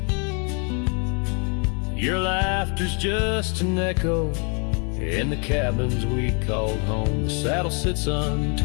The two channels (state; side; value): quieter; right; 36.8 dB